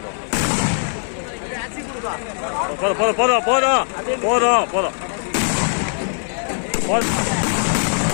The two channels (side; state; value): right; silent; digital silence